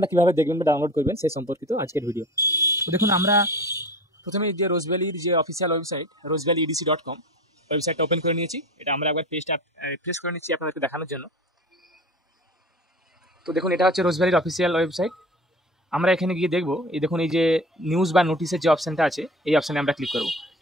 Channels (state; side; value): normal; both; correlation 0.36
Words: কীভাবে দেখবেন বা ডাউনলোড করবেন সেই সম্পর্কিত আজকের ভিডিও। তো দেখুন, আমরা প্রথমে যে রোজ ভ্যালির যে অফিসিয়াল ওয়েবসাইট rosevalleyedc.com ওয়েবসাইটটা ওপেন করে নিয়েছি। এটা আমরা একবার পেজটা রিফ্রেশ করে নিচ্ছি আপনাদেরকে দেখানোর জন্য। তো দেখুন, এটা হচ্ছে রোজ ভ্যালির অফিসিয়াল ওয়েবসাইট। আমরা এখানে গিয়ে দেখবো, এই দেখুন এই যে নিউজ বা নোটিসের যে অপশানটা আছে, এই অপশানে আমরা ক্লিক করব।